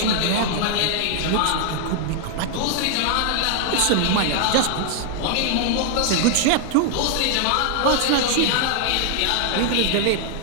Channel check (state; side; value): different; both; correlation 0.00